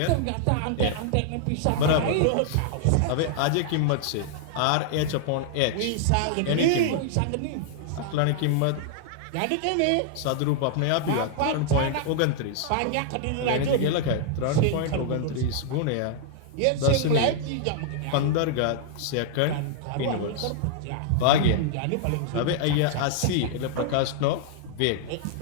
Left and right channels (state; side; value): different; both; correlation -0.01